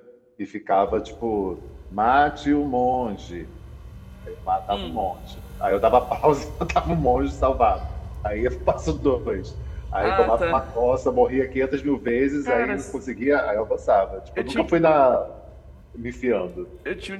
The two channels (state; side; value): identical; both; correlation 1.00